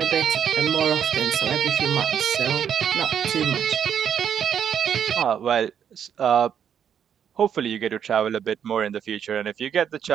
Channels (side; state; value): left; quieter; 8.5 dB